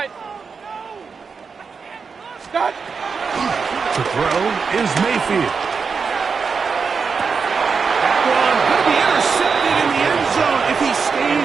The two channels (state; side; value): quieter; left; 5.4 dB